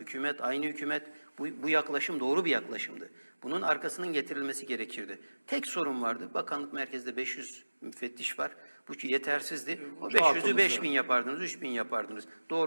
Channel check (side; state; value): both; inverted; correlation -1.00